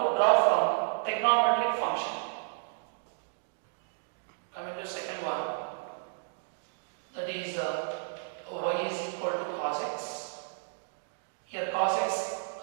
draw from trigonometric function. Coming to second one, that is y is equal to cos x. Here cos x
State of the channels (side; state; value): left; silent; digital silence